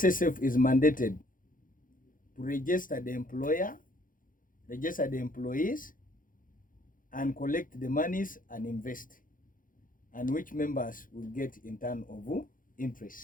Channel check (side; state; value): right; late; 0.40 ms